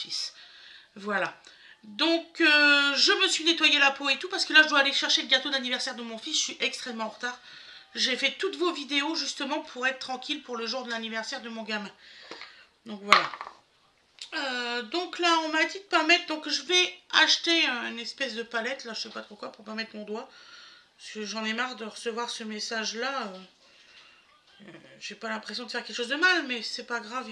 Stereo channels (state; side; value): identical; both; correlation 1.00